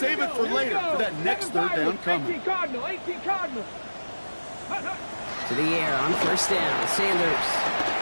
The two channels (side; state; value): both; inverted; correlation -1.00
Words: it for later for that next 3rd down coming. 18 Cardinal, 18 Cardinal. To the air on 1st down. Sanders.